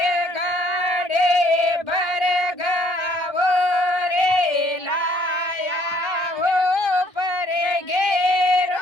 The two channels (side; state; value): right; late; 1.3 ms